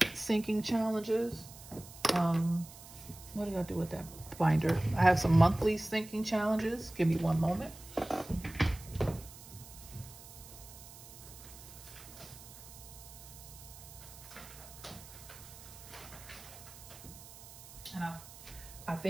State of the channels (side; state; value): right; noise; hiss, 17 dB below the sound